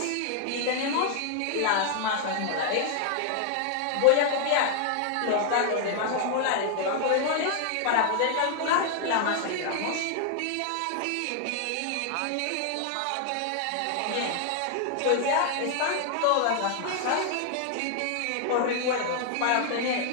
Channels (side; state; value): both; different; correlation 0.00